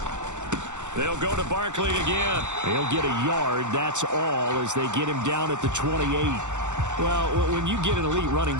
They'll go to Barkley again. He'll get a yard, that's all, as they get him down at the 28. Well, when you get an elite running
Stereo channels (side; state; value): left; late; 0.84 ms